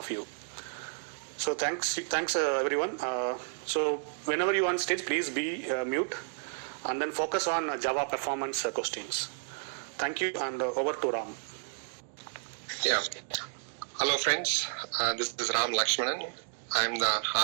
you. So thanks everyone. So whenever you are on stage, please be mute and then focus on Java performance questions. Thank you, and over to Ram. Yeah. Hello friends, this is Ram Lakshmanan. I'm the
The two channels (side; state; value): left; silent; digital silence